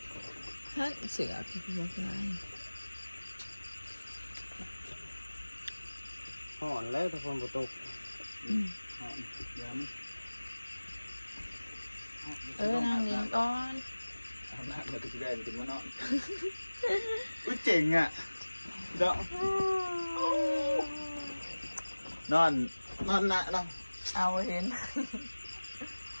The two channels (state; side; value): inverted; both; correlation -1.00